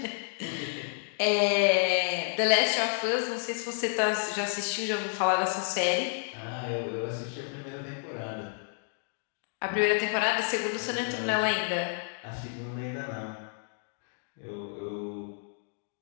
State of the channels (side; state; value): right; silent; 58 dB below the other